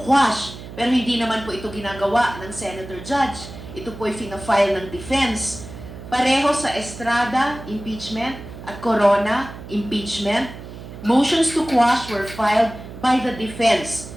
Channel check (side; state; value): right; noise; hum, 13 dB below the sound